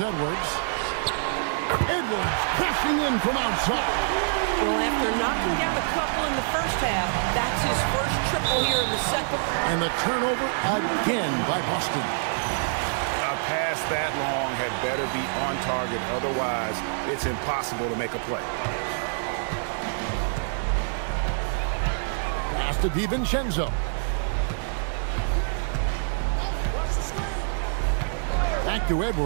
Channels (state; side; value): silent; left; digital silence